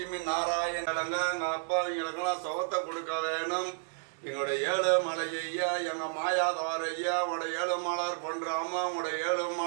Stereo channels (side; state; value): left; silent; 57 dB below the other